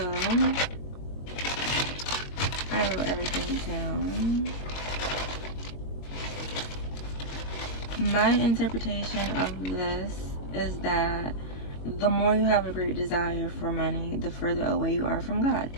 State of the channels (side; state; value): right; late; 21 ms